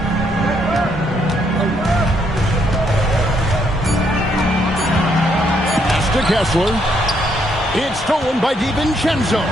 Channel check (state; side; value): normal; both; correlation 0.73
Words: Pass to Kessler. It's stolen by DiVincenzo.